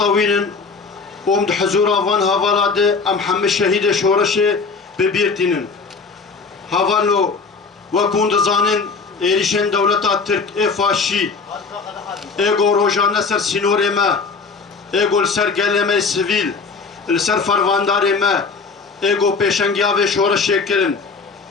ومد حزور أفان هفالاد أم حم الشهيد شورشة ببيرتين هفالو وكوند زانن إيريشن دولة ترك إفاشي إيغو روجان سر سينور ما إيغو سر قلمي سيفيل السر فرواندار ما إيغو بيشنجيا و شورشة كرن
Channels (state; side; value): quieter; right; 4.7 dB